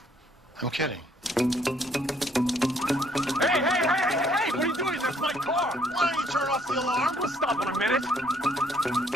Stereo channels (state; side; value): normal; both; correlation 0.65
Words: I'm kidding. Hey! What are you doing? That's my car! Why don't you turn off the alarm? We'll stop in a minute.